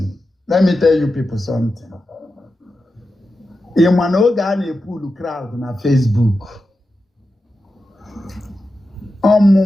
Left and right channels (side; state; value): both; normal; correlation 0.91